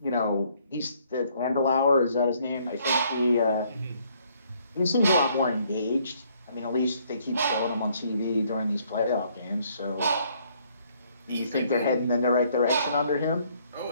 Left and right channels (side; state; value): both; inverted; correlation -0.66